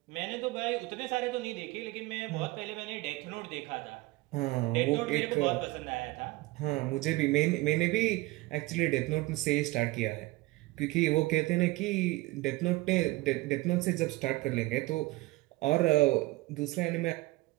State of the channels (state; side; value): quieter; left; 20.8 dB